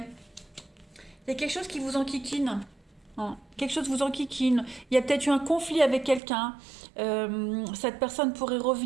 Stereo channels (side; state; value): left; drops out; at 6.2 s